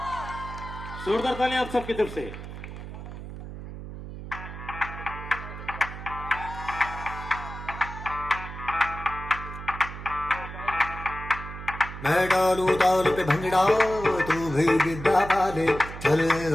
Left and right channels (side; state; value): right; noise; hum, 10 dB below the sound